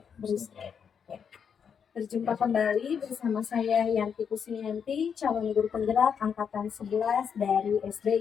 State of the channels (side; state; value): right; quieter; 7.1 dB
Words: Berjumpa kembali bersama saya Yanti Kusnianti, calon guru penggerak angkatan 11 dari